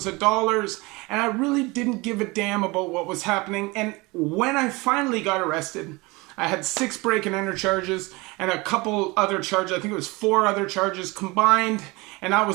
of dollars, and I really didn't give a damn about what was happening. And when I finally got arrested, I had 6 break and enter charges and a couple other charges. I think it was 4 other charges combined. And I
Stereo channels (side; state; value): left; quieter; 24.2 dB